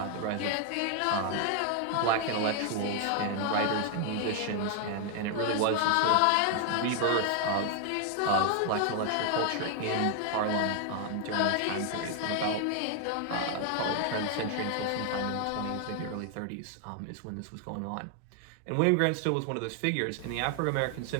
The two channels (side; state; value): both; different; correlation 0.00